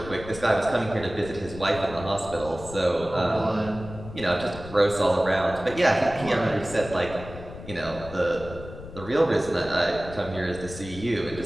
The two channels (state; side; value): noise; left; rumble, 13 dB below the sound